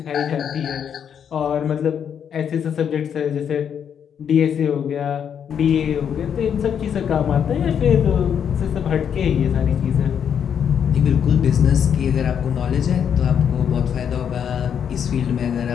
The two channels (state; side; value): quieter; right; 8.1 dB